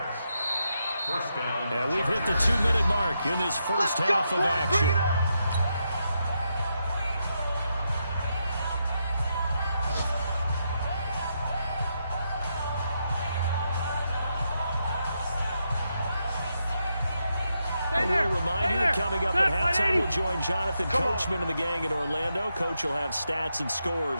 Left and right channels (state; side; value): inverted; both; correlation -0.83